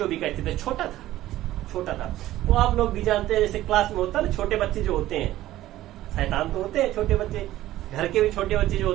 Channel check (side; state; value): left; quieter; 14.8 dB